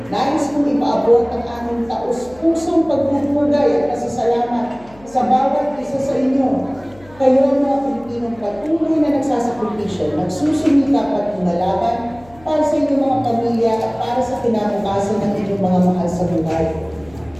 nais kong ipaabot ang aming taus-pusong pagpupugay at pasasalamat sa bawat isa sa inyo. Kayo mga Pilipinong patuloy na nagsasakripisyo, nagsusumikap at lumalaban para sa inyong mga pamilya at para sa kinabukasan ng inyong mga mahal sa buhay.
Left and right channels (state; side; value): noise; left; hum, 25 dB below the sound